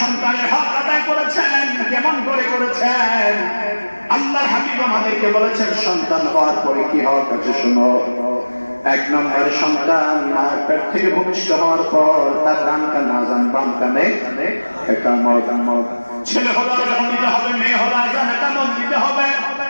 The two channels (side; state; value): both; inverted; correlation -1.00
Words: সন্তানের হক আদায় করেছেন। কেমন করে করেছেন? আল্লাহর হাবিব আমাদেরকে বলেছেন সন্তান হওয়ার পরে কি হক আছে শুনো। 1 নম্বরে সন্তান পেট থেকে ভূমিষ্ঠ হওয়ার পর তার ডান কানে আযান, বাম কানে ইকামত। ছেলে হলে আযান দিতে হবে, মেয়ে হলে আযান ইকামত দিতে হবে।